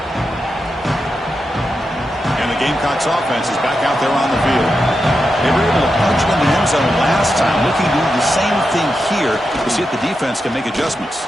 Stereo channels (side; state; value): both; normal; correlation 0.88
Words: And the Gamecocks offense is back out there on the field. They were able to punch it in the end zone last time, looking to do the same thing here to see if the defense can make adjustments.